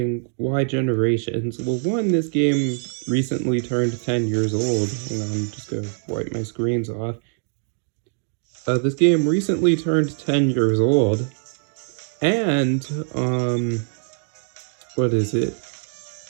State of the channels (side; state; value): left; silent; digital silence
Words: why Generations? Well, one, this game recently turned 10 years old. Hang on, I'm just gonna wipe my screens off. This game recently turned 10 years old, and, what is it?